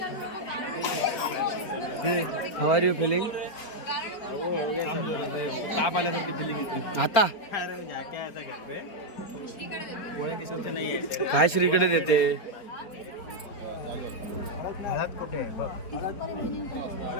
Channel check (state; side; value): late; right; 4.4 ms